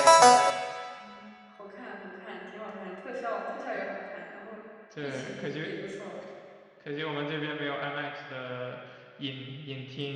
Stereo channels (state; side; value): identical; both; correlation 1.00